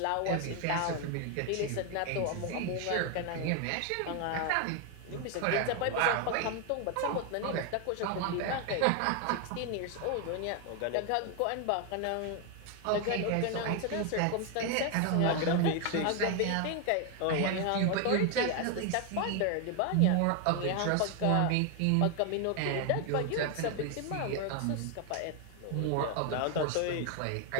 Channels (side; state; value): both; different; correlation 0.01